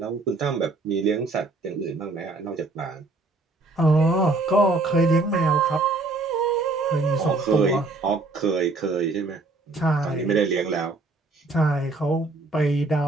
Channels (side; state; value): left; quieter; 3.3 dB